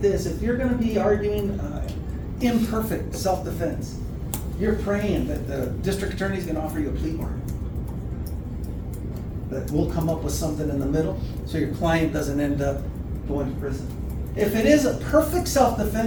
this, if you're gonna be arguing imperfect self-defense, you're praying that the district attorney's gonna offer you a plea bargain. That we'll come up with something in the middle, so your client doesn't end up going to prison. If it is a perfect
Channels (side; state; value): both; identical; correlation 1.00